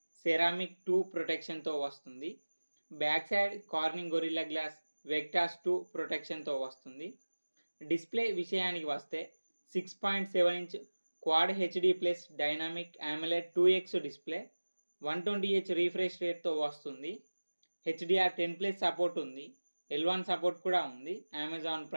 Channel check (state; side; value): inverted; both; correlation -1.00